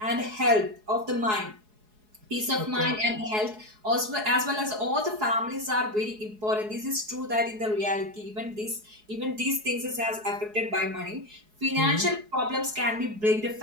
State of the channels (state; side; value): late; left; 4.7 ms